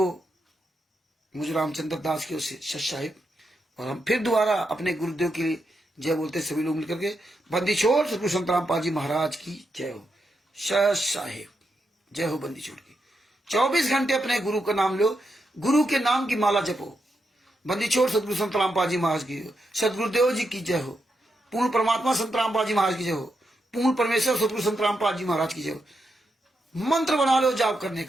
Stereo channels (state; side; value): normal; both; correlation 0.84